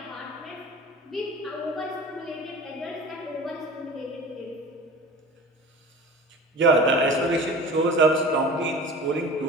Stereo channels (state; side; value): normal; both; correlation 0.37